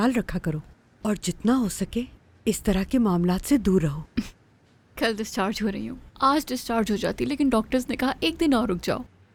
रखा करो और जितना हो सके इस तरह के मामलात से दूर रहो। कल डिस्चार्ज हो रही हूँ, आज डिस्चार्ज हो जाती, लेकिन डॉक्टर्स ने कहा एक दिन और रुक जाओ।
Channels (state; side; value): identical; both; correlation 1.00